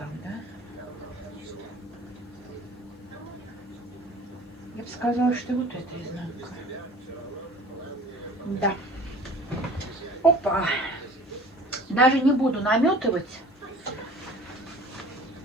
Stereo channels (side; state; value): both; normal; correlation 0.45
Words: да? Я бы сказала, что вот это изнанка. Да. Опа. Даже не буду наметывать.